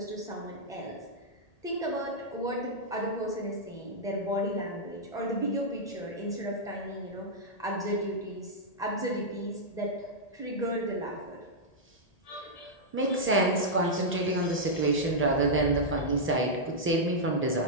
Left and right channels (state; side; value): late; right; 1.8 ms